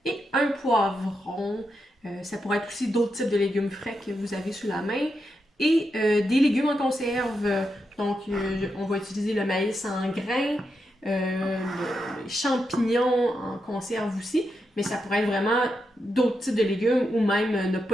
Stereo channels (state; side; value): normal; both; correlation 0.85